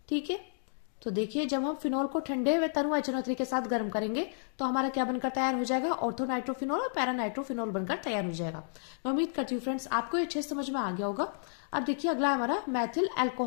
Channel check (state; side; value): silent; right; digital silence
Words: ठीक है, तो देखिए जब हम फिनॉल को ठंडे व तनु HNO3 के साथ गर्म करेंगे तो हमारा क्या बनकर तैयार हो जाएगा? ऑर्थो नाइट्रोफिनोल और पैरा नाइट्रोफिनोल बनकर तैयार हो जाएगा। मैं उम्मीद करती हूँ फ्रेंड्स आपको ये अच्छे समझ में आ गया होगा। अब देखिए अगला हमारा मैथिल